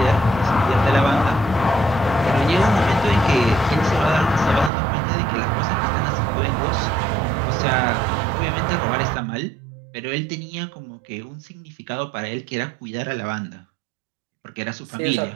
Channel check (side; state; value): left; drops out; at 4.7 s